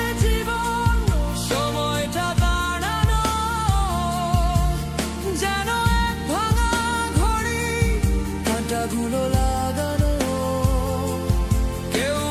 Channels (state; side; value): identical; both; correlation 1.00